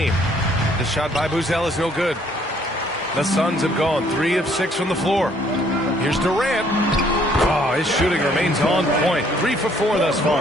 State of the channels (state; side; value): normal; both; correlation 0.63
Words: The shot by Buzelis is no good. The Suns have gone 3 of 6 from the floor. Here's Durant. Oh, his shooting remains on point. 3 for 4 thus